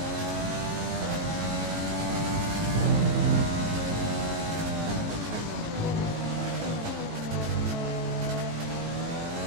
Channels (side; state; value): left; late; 18 ms